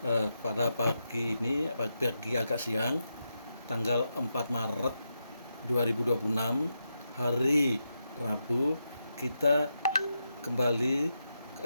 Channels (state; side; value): inverted; both; correlation -0.86